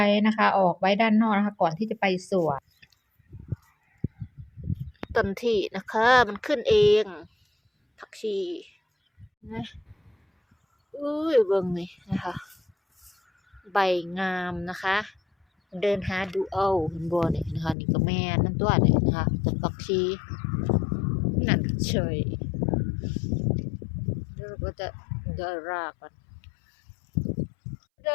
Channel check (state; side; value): drops out; right; at 17.8 s